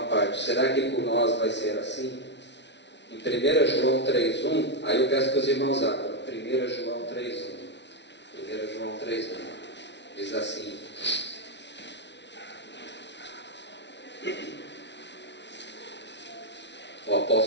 Será que por nós vai ser assim? Em 1 João 3,1, aí eu peço que os irmãos abram. 1 João 3,1. 1 João 3,1 diz assim: o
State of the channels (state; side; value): late; right; 0.51 ms